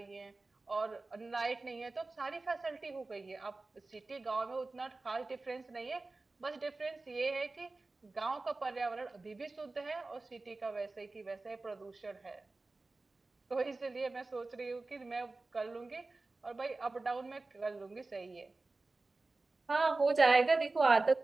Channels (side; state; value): left; quieter; 3.4 dB